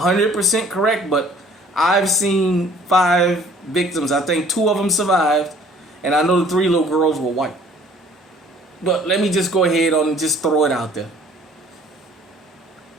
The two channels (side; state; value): both; normal; correlation 0.55